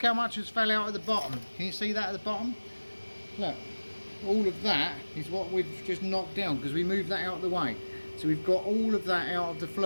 how much has fell out at the bottom. Can you see that at the bottom? Look. All of that is what we've just knocked down because we moved that out of the way. So we've got all of that out of the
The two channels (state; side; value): inverted; both; correlation -1.00